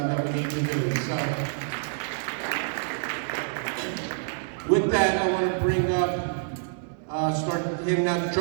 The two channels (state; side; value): silent; left; digital silence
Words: that we need to do. So, with that, I want to bring up, start handing out the